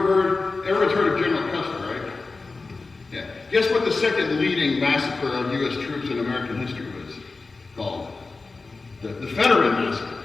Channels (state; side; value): quieter; right; 3.8 dB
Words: heard of General Custer, right? Yeah. Guess what the second leading massacre of U.S. troops in American history was called? The Fetterman Massacre.